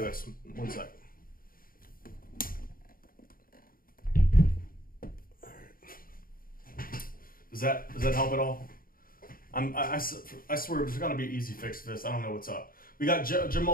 One sec. All right. Does that help at all? I swear there's got to be an easy fix to this. I don't know what's up. We got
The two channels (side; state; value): right; late; 0.41 ms